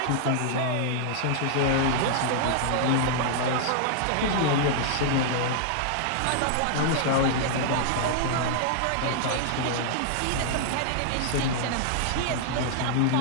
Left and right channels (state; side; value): different; both; correlation -0.01